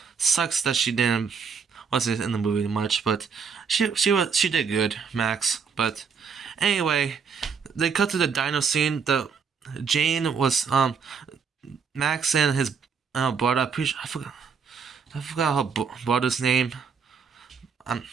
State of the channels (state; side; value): quieter; left; 6.1 dB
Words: Sucks that she wasn't in the movie much, but she did good, Max. But anyway, they cut to the dino scene. Jane was Max and his brother. I forgot her brother's name. I'm